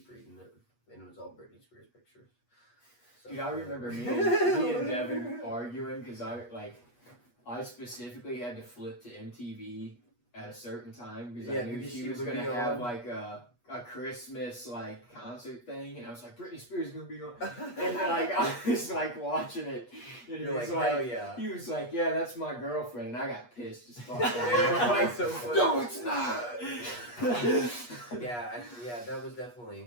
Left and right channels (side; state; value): right; late; 8.3 ms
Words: reading it, and it was all Britney Spears pictures. So, Dude, I remember me and Devin arguing because I specifically had to flip to MTV at a certain time because I knew because she she was would gonna be have on. like a Christmas like concert thing, and I was like, Britney Spears is gonna be on, and like I was like watching it, and he You're was like, hell like, yeah. he was like, yeah, that's my girlfriend, and I got pissed as fuck. Like, so funny. No, it's not. Yeah, that was